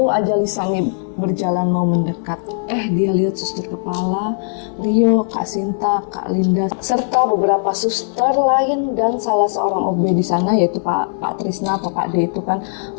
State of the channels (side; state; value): right; silent; digital silence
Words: aja Lisa nih berjalan mau mendekat, dia lihat suster kepala, Rio, Kak Sinta, Kak Linda, serta beberapa suster lain dan salah seorang OB di sana yaitu Pak Trisna atau Pak D itu kan